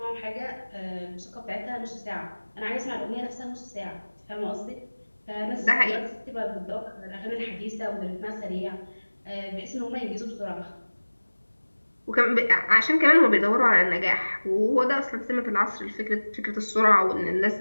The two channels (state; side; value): inverted; both; correlation -1.00